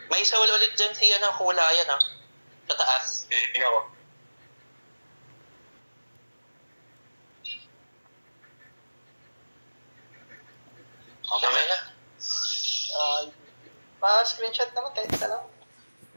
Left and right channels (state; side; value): inverted; both; correlation -1.00